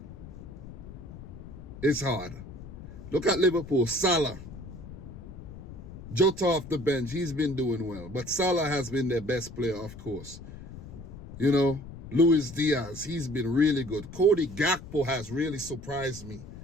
It's hard. Look at Liverpool. Salah. Jota off the bench. He's been doing well. But Salah has been their best player, of course. Luis Diaz. He's been really good. Cody Gakpo has really surprised me.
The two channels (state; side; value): noise; left; rumble, 14 dB below the sound